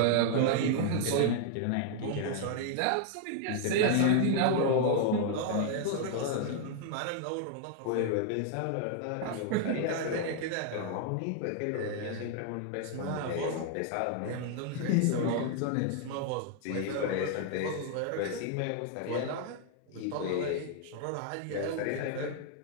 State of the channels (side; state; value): both; different; correlation 0.00